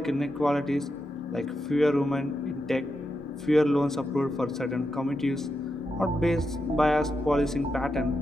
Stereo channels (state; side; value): normal; both; correlation 0.86